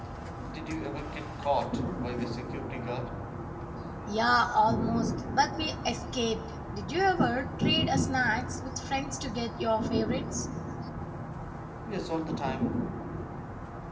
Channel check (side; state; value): both; identical; correlation 1.00